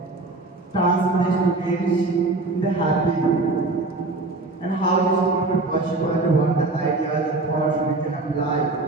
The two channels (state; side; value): quieter; left; 3.2 dB